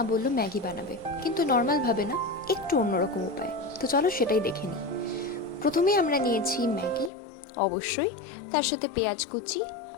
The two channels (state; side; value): drops out; right; at 7.1 s